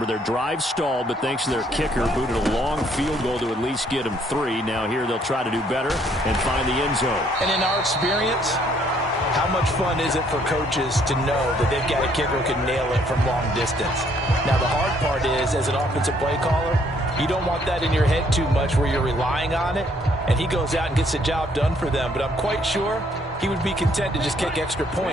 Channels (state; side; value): normal; both; correlation 0.66